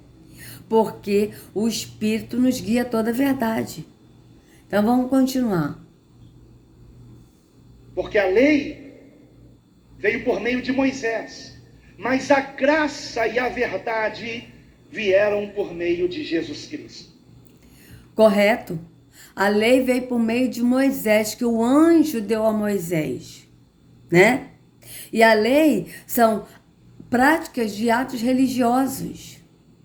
Porque o Espírito nos guia toda a verdade. Então vamos continuar. Porque a lei veio por meio de Moisés, mas a graça e a verdade vieram por meio de Jesus Cristo. Correto? A lei veio por meio de Moisés, que o anjo deu a Moisés, né? E a lei são práticas de atos religiosos.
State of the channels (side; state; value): both; identical; correlation 1.00